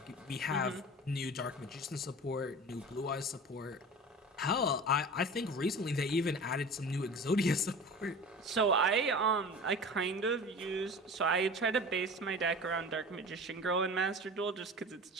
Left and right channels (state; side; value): normal; both; correlation 0.36